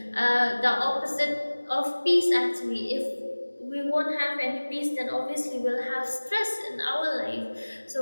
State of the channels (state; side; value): inverted; both; correlation -1.00